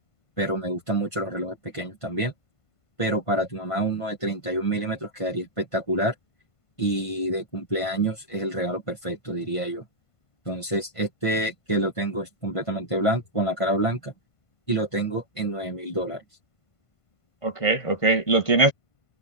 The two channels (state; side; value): late; right; 1.5 ms